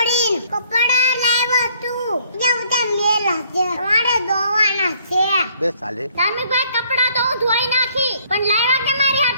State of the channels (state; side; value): inverted; both; correlation -0.63